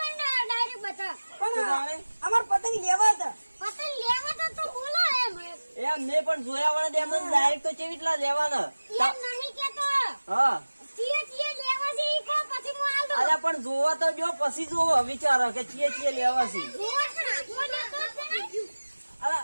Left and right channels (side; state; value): both; inverted; correlation -1.00